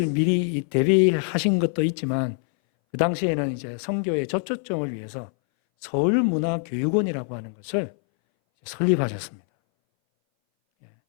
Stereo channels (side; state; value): right; silent; 60 dB below the other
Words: 미리 대비하신 것도 있지만 그 당시에는 이제 선교의 접촉점을 위해서 서울문화교육원이라고 하는 것을 설립하셨습니다.